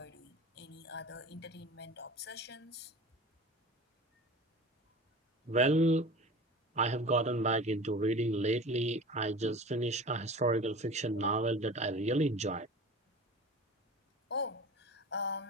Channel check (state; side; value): normal; both; correlation 0.37